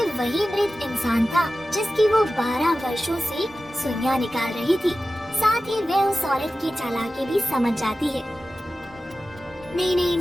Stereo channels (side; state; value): both; normal; correlation 0.95